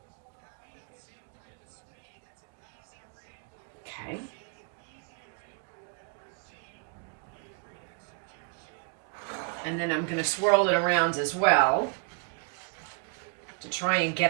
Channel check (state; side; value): quieter; left; 39.2 dB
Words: Okay. And then I'm going to swirl it around as well to try and